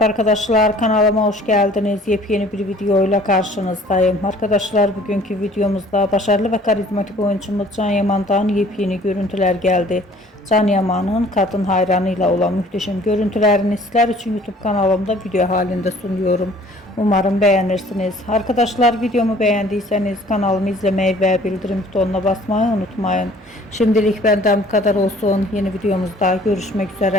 arkadaşlar, kanalıma hoş geldiniz. Yepyeni bir videoyla karşınızdayım. Arkadaşlar, bugünkü videomuzda başarılı ve karizmatik oyuncumuz Can Yaman'dan yepyeni görüntüler geldi. Can Yaman'ın kadın hayranıyla olan muhteşem görüntülerini sizler için YouTube kanalımda video halinde sunuyorum. Umarım beğenirsiniz. Arkadaşlar, videomu beğendiyseniz kanalımı izlemeyi ve bildirim butonuna basmayı unutmayın. Şimdilik benden bu kadar olsun. Yeni videomuzda görüşmek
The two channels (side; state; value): both; normal; correlation 0.53